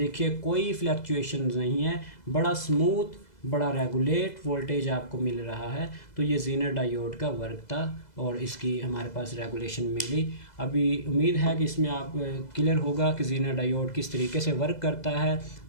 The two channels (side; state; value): right; late; 2.0 ms